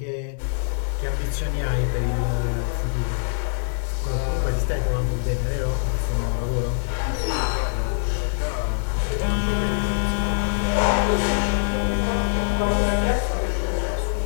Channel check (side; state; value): right; silent; 63 dB below the other